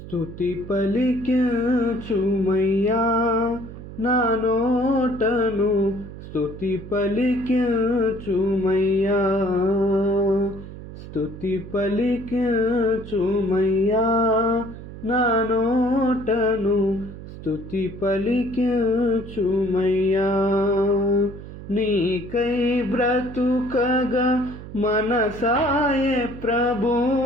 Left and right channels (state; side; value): noise; right; hum, 13 dB below the sound